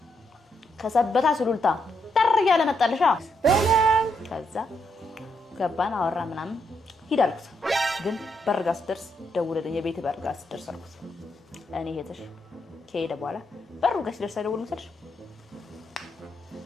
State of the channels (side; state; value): both; normal; correlation 0.79